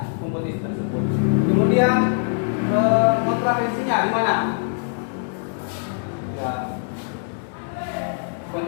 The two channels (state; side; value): silent; right; digital silence